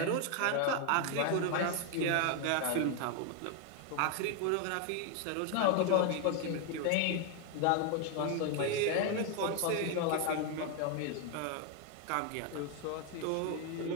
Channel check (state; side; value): different; both; correlation 0.01